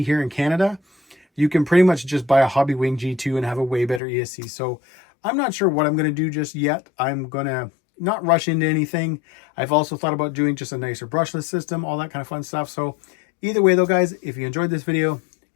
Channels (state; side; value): drops out; right; at 4.0 s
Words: here in Canada, you can pretty much just buy a Hobby Wing G2 and have a way better ESC. So I'm not sure what I'm going to do just yet. I'm going to not rush into anything. I've also thought about doing just a nicer brushless system, all that kind of fun stuff. So either way though, guys, if you enjoyed this video,